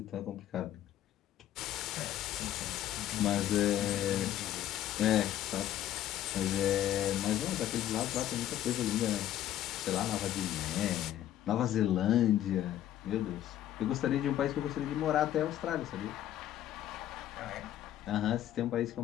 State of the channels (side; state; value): right; quieter; 12.2 dB